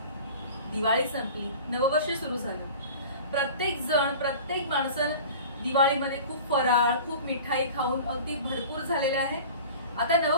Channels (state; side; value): inverted; both; correlation -0.40